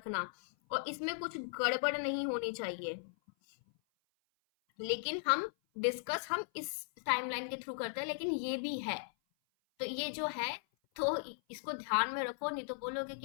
और इसमें कुछ गड़बड़ नहीं होनी चाहिए। लेकिन हम इस टाइमलाइन के थ्रू करते हैं, लेकिन ये भी है, तो ये जो है, तो इसको ध्यान में रखो, नहीं तो बोलोगे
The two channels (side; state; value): right; silent; 53 dB below the other